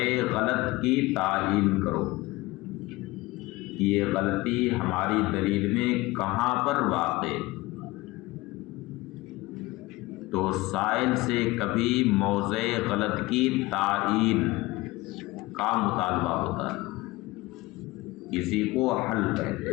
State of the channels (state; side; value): quieter; right; 20.5 dB